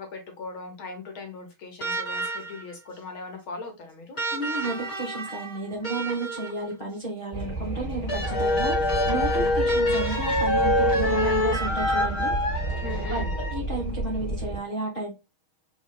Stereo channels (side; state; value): right; late; 6.3 ms